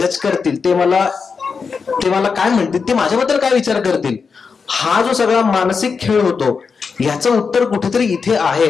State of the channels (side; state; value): right; quieter; 5.4 dB